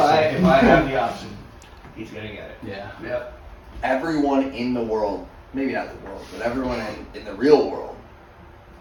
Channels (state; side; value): identical; both; correlation 1.00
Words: have the option, he's gonna get it. Yeah. Yep. Everyone in the world, maybe not the world, but everyone in the real world